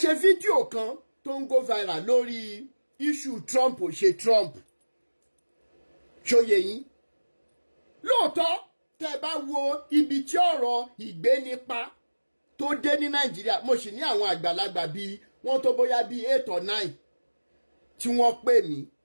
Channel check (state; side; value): inverted; both; correlation -1.00